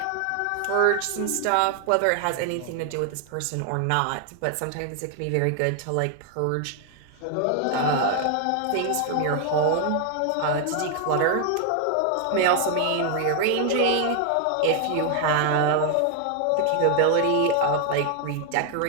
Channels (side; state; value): both; different; correlation 0.00